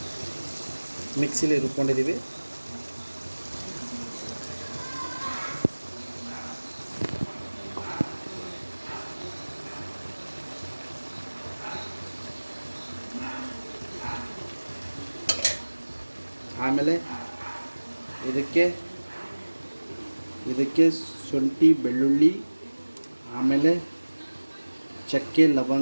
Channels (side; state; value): both; inverted; correlation -1.00